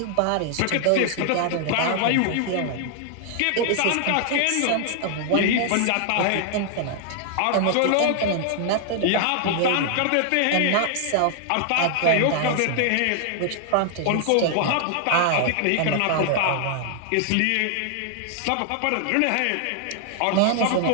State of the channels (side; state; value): both; different; correlation 0.00